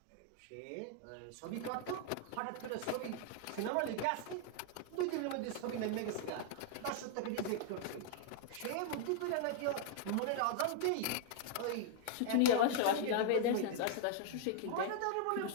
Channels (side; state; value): both; different; correlation -0.01